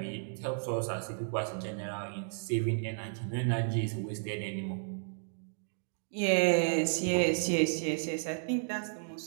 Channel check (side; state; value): left; silent; digital silence